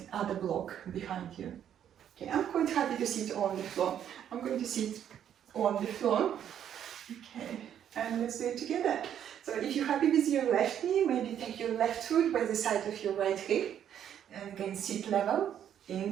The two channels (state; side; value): quieter; left; 9.7 dB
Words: other block behind you. Okay, I'm quite happy to sit on the floor. I'm going to sit on the floor. Okay, and let's do it together. So if you're happy with your left knee, maybe take your left foot by the side of your right hip. And again, sit level.